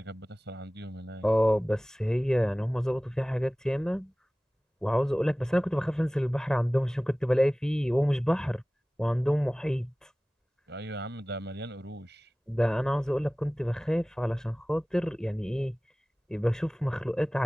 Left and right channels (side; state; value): both; normal; correlation 0.98